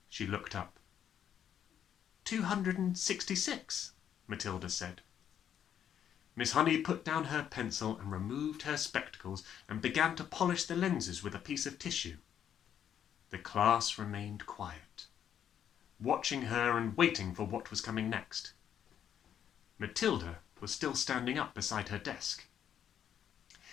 She looked up. 266, Matilda said. Miss Honey put down her pencil and removed her spectacles and began to polish the lenses with a piece of tissue. The class remained quiet, watching her and waiting for what was coming next. Matilda was still standing up beside her desk.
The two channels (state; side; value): quieter; right; 9.3 dB